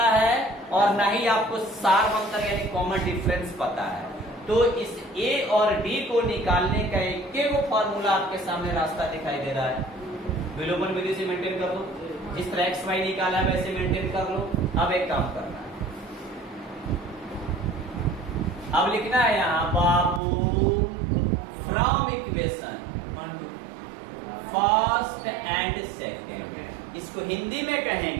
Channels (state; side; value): drops out; left; at 20.2 s